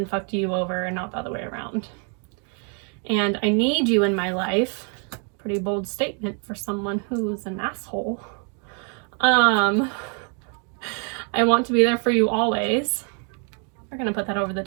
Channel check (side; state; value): left; quieter; 39.7 dB